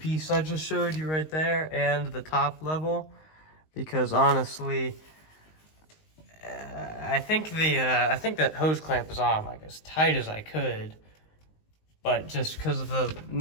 I just showed you right there and the top level, because honestly, I think that hose clamp is on like as tight as I could, but just because of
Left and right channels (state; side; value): late; right; 19 ms